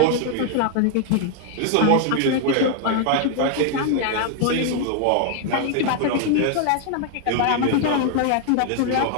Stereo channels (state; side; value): different; both; correlation 0.00